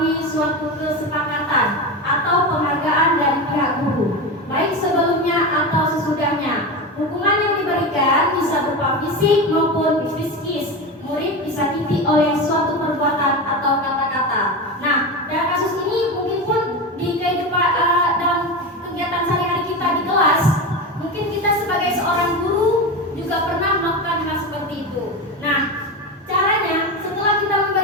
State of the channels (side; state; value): both; normal; correlation 0.21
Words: suatu kesepakatan atau penghargaan dari pihak guru, baik sebelumnya atau sesudahnya. Hukuman yang diberikan bisa berupa fisik maupun psikis. Murid disakiti oleh suatu perbuatan atau kata-kata. Nah, dalam kasus ini mungkin pun di kehidupan dalam kegiatan sehari-hari kita di kelas, mungkin kita sebagai seorang guru juga pernah melakukan hal seperti itu. Nah, caranya setelah kita